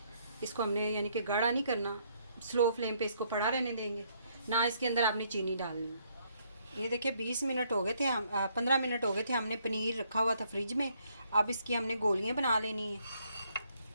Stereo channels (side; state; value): both; inverted; correlation -0.69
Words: इसको हमने यानी कि गाढ़ा नहीं करना, स्लो फ्लेम पे इसको पड़ा रहने देंगे। ना इसके अंदर आपने चीनी डालनी है। ये देखिए 20 मिनट हो गए थे, हम 15 मिनट हो गए थे, हमने पनीर रखा हुआ था फ्रिज में। अब इसकी हमने गोलियां बना लेनी है।